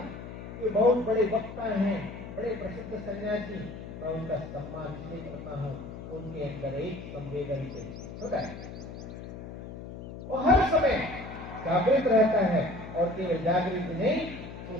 कि बहुत बड़े वक्ता हैं, बड़े प्रसिद्ध सन्यासी, मैं उनका सम्मान इसलिए करता हूँ, उनके अंदर एक संवेदनशील होता है, वो हर समय जागृत रहता है, और केवल जागृत नहीं तो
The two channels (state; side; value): noise; left; hum, 11 dB below the sound